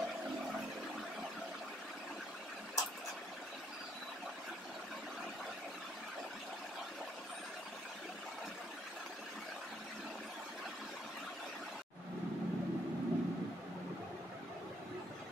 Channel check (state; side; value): normal; both; correlation 0.70